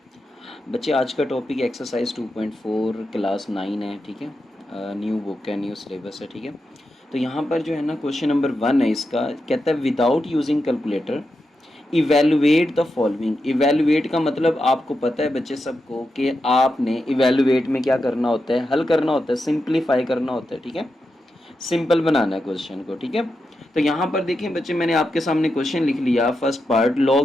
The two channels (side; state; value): both; normal; correlation 0.88